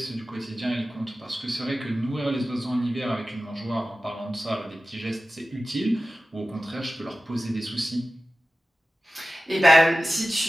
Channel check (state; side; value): normal; both; correlation 0.95